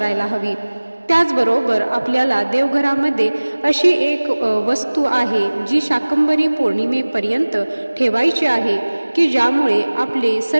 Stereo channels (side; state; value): both; inverted; correlation -1.00